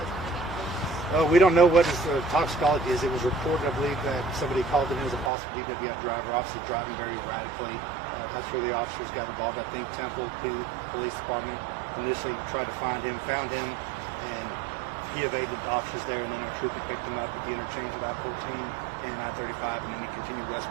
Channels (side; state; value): left; drops out; at 5.3 s